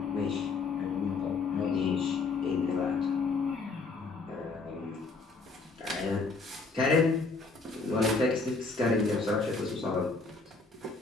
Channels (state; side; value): quieter; right; 4.1 dB